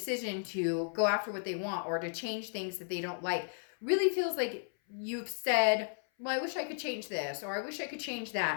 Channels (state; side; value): silent; right; 55 dB below the other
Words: to go after what they want or to change things that they don't like. Really feels like you've said, well, I wish I could change this, or I wish I could change